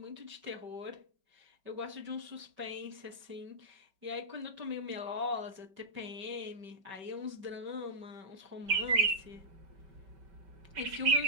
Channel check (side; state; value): left; late; 5.2 ms